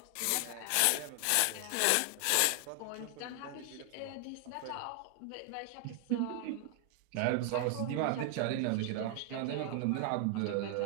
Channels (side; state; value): both; different; correlation 0.00